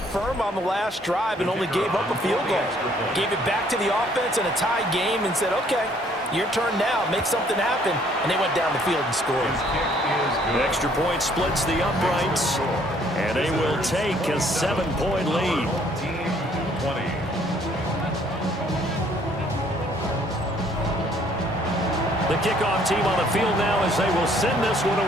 firm on the last drive and only gave up a field goal. Gave it back to the offense in a tie game and said, okay, your turn now, make something happen. And they went down the field and scored. The extra point splits the uprights, and they will take a 7-point lead. Team 20. The kickoff team on the field now as they will send this one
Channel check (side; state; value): both; normal; correlation 0.63